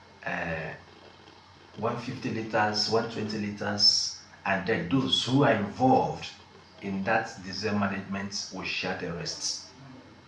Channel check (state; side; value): identical; both; correlation 1.00